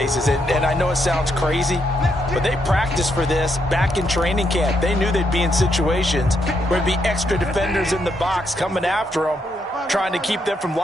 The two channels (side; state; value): both; normal; correlation 0.78